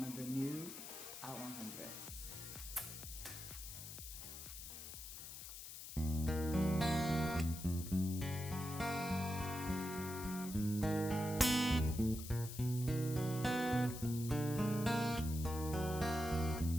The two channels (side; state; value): left; noise; hiss, 10 dB below the sound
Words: of the new Out100.